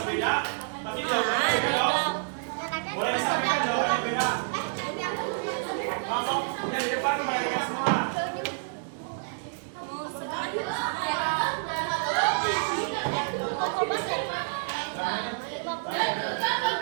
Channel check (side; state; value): left; silent; digital silence